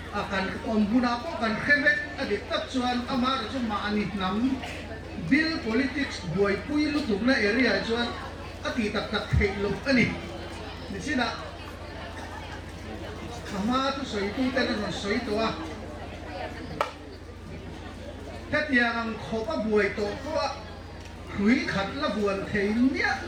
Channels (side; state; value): both; identical; correlation 1.00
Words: akan ombuna ko kan khebek adik tak chuan amar chu ma ani nam bill politics boy pui lu tum na area chuan ati tak thei lu ani ni sina ama tu soi tu tên là soi tua thế thì ang khó có buổi tổ có hủy khát là buồn thấy nhẹ